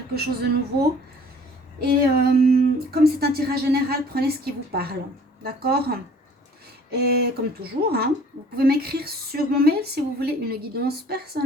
chose de nouveau. Et comme c'est un tirage général, prenez ce qui vous parle, d'accord? Et comme toujours, hein, vous pouvez m'écrire sur mon mail si vous voulez une guidance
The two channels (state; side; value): normal; both; correlation 0.53